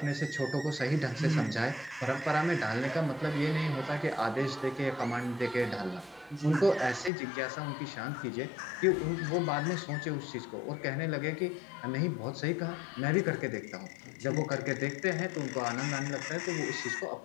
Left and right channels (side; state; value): right; drops out; at 7.1 s